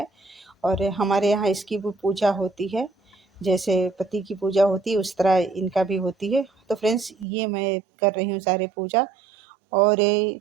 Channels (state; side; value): drops out; left; at 7.2 s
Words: और हमारे यहाँ इसकी भी पूजा होती है। जैसे पति की पूजा होती है उस तरह इनका भी होती है। तो फ्रेंड्स, ये मैं कर रही हूँ सारे पूजा। और